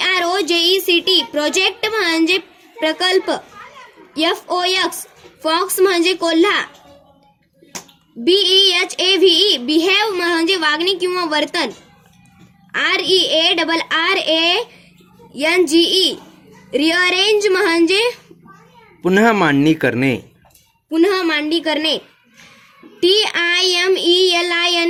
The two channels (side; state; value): both; identical; correlation 1.00